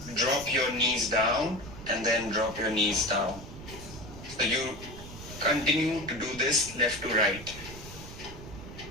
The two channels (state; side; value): noise; right; rumble, 13 dB below the sound